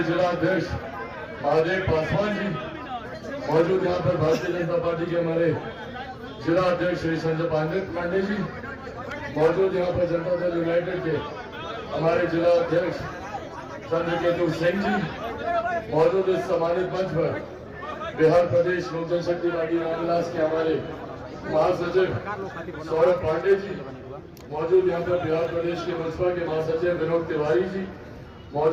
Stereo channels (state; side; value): identical; both; correlation 1.00